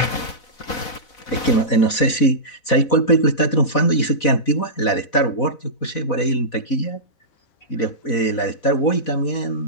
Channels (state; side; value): late; right; 4.1 ms